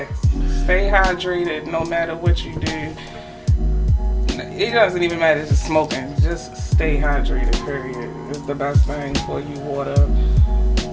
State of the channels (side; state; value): both; identical; correlation 1.00